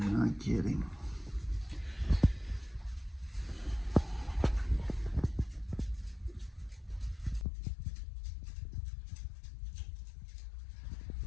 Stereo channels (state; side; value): drops out; right; at 7.5 s